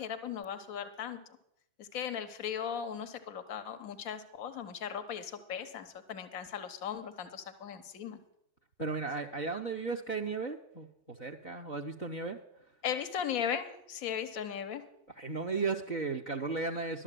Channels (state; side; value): late; right; 4.1 ms